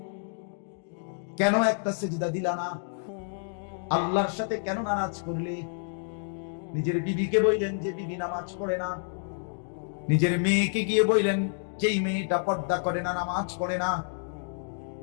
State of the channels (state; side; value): silent; right; digital silence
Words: কেন একটা সেজদা দিলা না? আল্লাহর সাথে কেন নারাজ করলে? নিজের বিবিকে বললেন যে বিবি নামাজ পড়ে না, নিজের মেয়েকে গিয়ে বললেন যেই মেয়েটা পর্দা করে না, নামাজ পড়ে না,